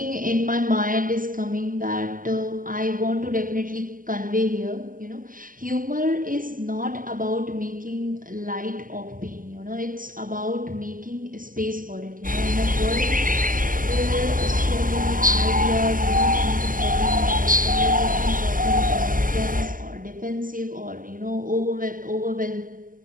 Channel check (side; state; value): left; late; 0.40 ms